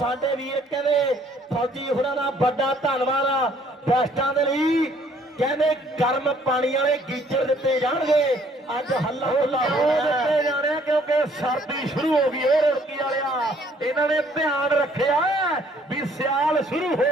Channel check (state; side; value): normal; both; correlation 0.62